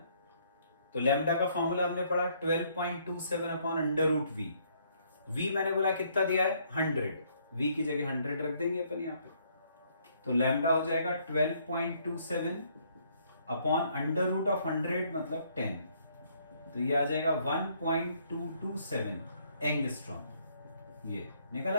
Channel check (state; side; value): inverted; both; correlation -0.67